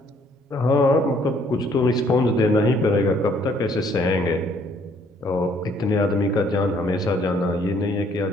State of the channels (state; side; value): normal; both; correlation 0.64